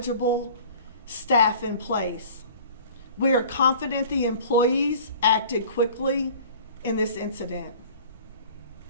staff in place. We are confident the employees acted quickly in this incident,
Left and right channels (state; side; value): inverted; both; correlation -0.45